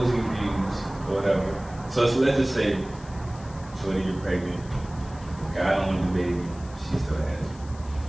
views or whatever, so let's just say, shorty, you're pregnant, guy don't want the baby, she still has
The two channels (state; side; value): noise; left; hiss, 23 dB below the sound